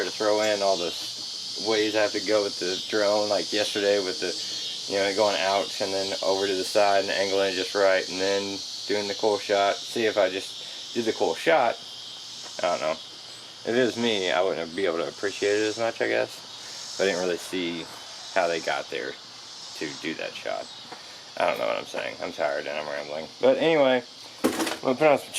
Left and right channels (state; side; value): identical; both; correlation 1.00